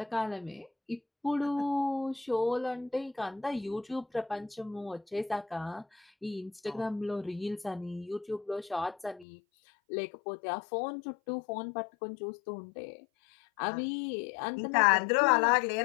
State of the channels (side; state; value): right; drops out; at 9.2 s